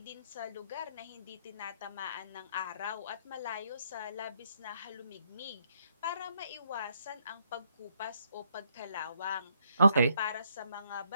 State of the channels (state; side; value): inverted; both; correlation -0.71